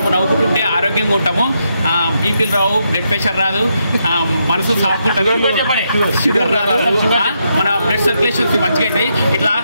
నవ్వుకుంటుంటే ఆరోగ్యంగా ఉంటాము. బీపీలు రావు, బ్లడ్ ప్రెషర్ రాదు, మనసు సాఫ్ట్ ఉంటుంది, షుగర్ రాదు, మన బ్లడ్ సర్క్యులేషన్స్ మంచిగా అవుతాయి. ఇట్లా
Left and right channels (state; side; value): inverted; both; correlation -0.80